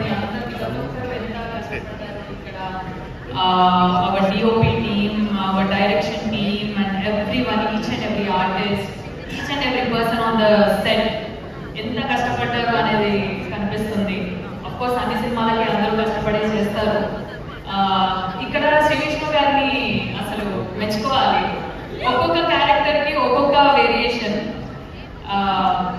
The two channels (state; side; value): identical; both; correlation 1.00